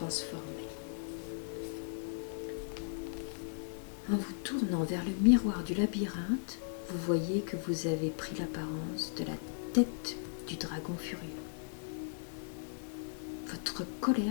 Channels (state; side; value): silent; right; 53 dB below the other